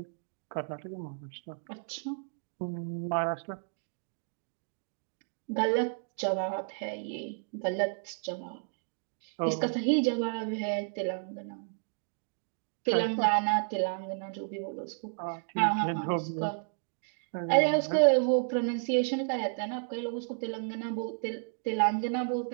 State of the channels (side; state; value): left; silent; digital silence